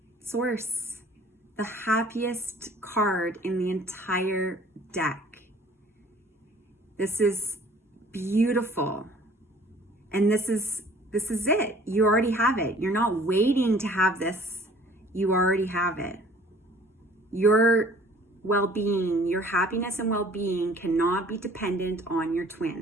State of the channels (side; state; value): both; normal; correlation 0.52